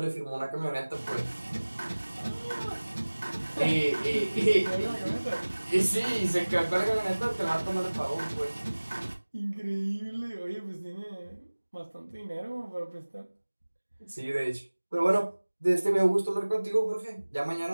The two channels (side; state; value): both; inverted; correlation -1.00